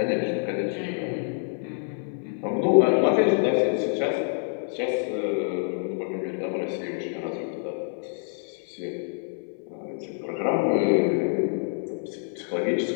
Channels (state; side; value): silent; right; digital silence